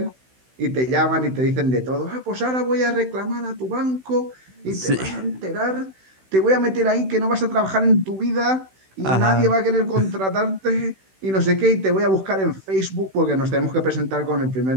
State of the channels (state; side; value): late; left; 16 ms